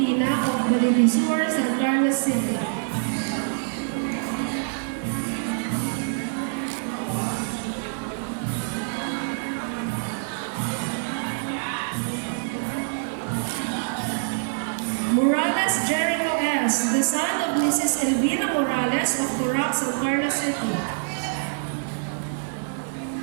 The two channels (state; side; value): silent; left; digital silence